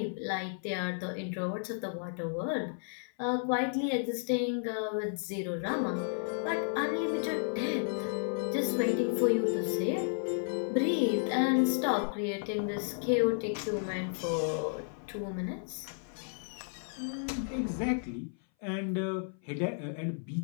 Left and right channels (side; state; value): right; silent; 56 dB below the other